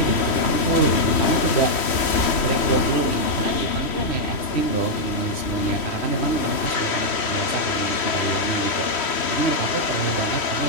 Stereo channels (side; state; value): right; late; 3.1 ms